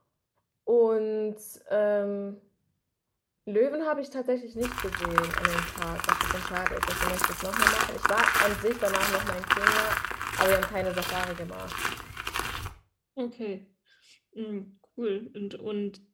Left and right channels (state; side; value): identical; both; correlation 1.00